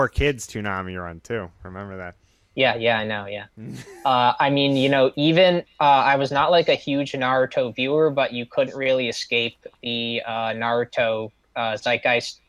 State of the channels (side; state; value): both; identical; correlation 1.00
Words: Toonami run too. Remember that? Yeah, I know. Yeah. I mean, even I was not like a huge Naruto viewer, but you couldn't really escape the Naruto zeitgeist